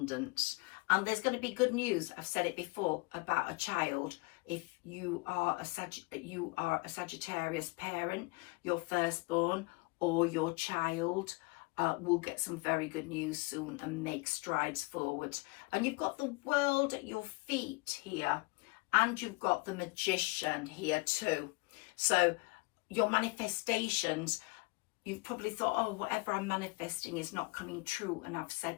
and there's going to be good news. I've said it before about a child. If you are a Sagittarius parent, your firstborn or your child will get some very good news soon and make strides forward. And you've got the world at your feet here, and you've got the Magician here too. So your manifestations, you've probably thought, oh, whatever I'm manifesting is not coming true. And I've said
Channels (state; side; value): quieter; right; 27.7 dB